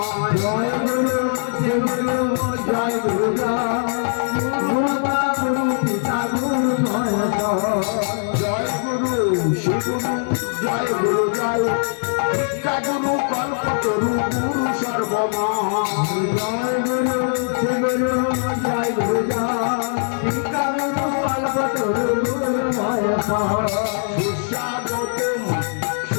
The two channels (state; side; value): silent; right; digital silence